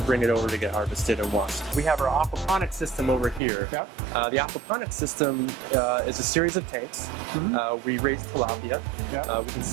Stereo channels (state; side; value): drops out; left; at 3.4 s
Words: bring it over to get harvested and washed. We have our aquaponics system over here. The aquaponics system is a series of tanks. We raise tilapia. We can